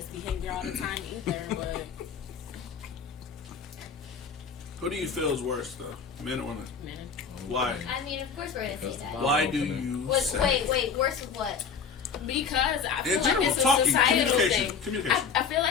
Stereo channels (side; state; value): right; quieter; 6.1 dB